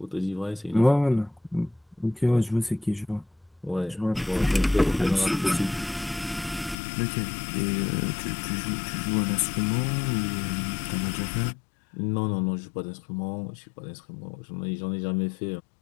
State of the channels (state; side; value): drops out; right; at 6.8 s